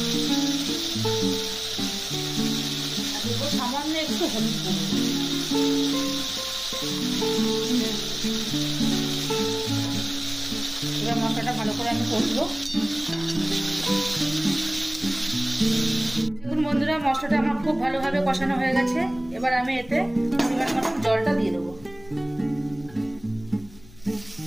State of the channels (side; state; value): left; noise; hum, 22 dB below the sound